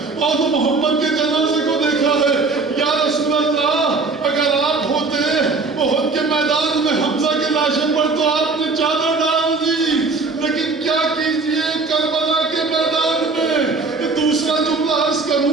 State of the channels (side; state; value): left; quieter; 3.9 dB